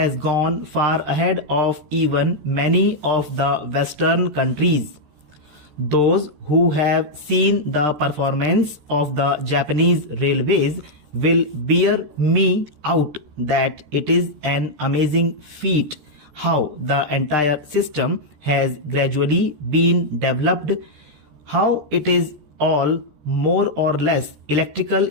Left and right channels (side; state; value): left; late; 13 ms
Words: gone far ahead of even many of the Western countries. Those who have seen the performance of the Japanese railways will bear me out that it is an amazing feat how the entire system has gradually been developed, how it is all more or less electrical